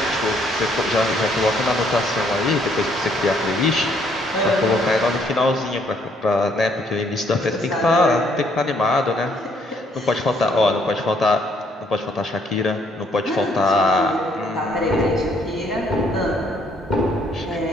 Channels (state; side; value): normal; both; correlation 0.67